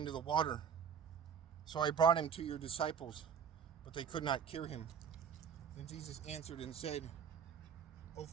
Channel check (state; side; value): quieter; left; 7.5 dB